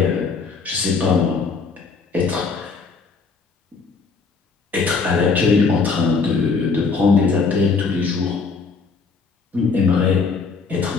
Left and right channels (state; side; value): quieter; right; 4.7 dB